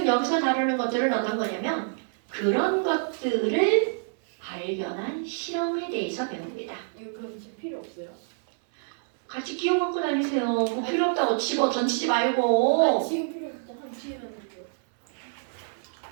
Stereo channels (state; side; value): silent; left; 58 dB below the other